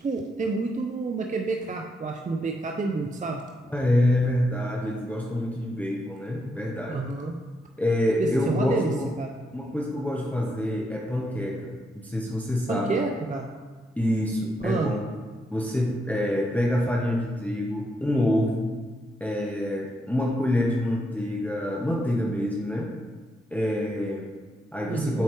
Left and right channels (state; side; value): normal; both; correlation 0.79